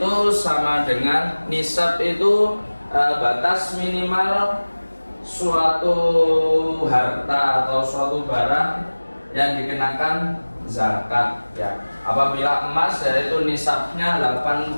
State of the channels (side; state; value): both; inverted; correlation -1.00